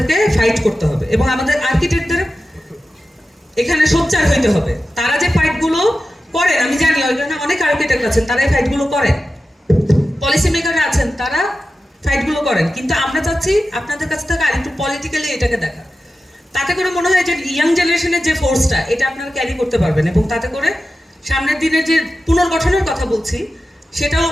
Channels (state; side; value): normal; both; correlation 0.93